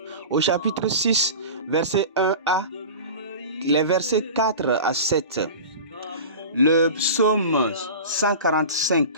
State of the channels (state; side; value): inverted; both; correlation -0.34